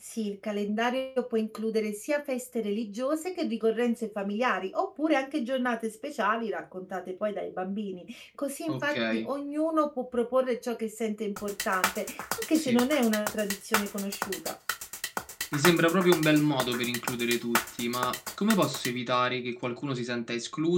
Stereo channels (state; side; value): identical; both; correlation 1.00